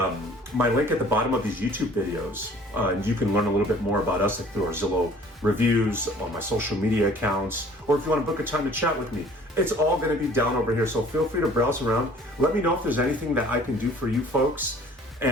at the bottom of these YouTube videos, and you can learn a little bit more about us through our Zillow reviews, on my social media accounts, or if you want to book a time to chat with me, it's all going to be down over here. So feel free to browse around. Let me know if there's anything that I can do for you folks.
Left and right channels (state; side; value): normal; both; correlation 0.52